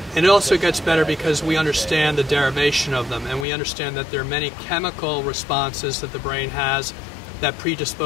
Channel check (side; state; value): right; drops out; at 3.5 s